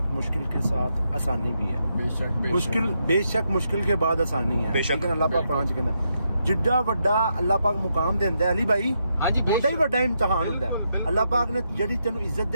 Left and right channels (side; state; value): both; inverted; correlation -0.81